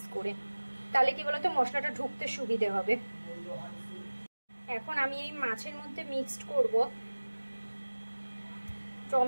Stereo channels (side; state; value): both; inverted; correlation -1.00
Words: করে। তাহলে কি বলতো মশলাটা ঢুকতে সুবিধে হবে। এখন আমি এই মাছের মধ্যে মিক্সড করব